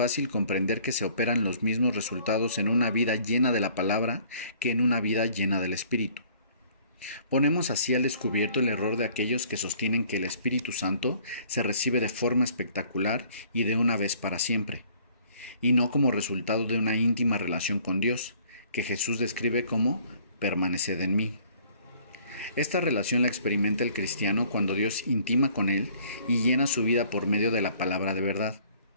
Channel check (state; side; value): inverted; both; correlation -0.57